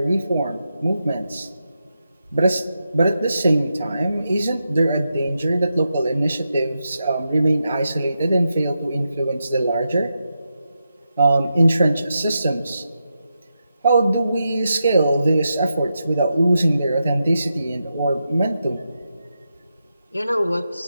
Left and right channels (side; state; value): both; inverted; correlation -0.87